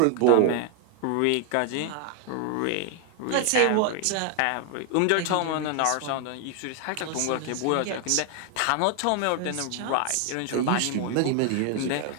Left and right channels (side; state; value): both; different; correlation 0.00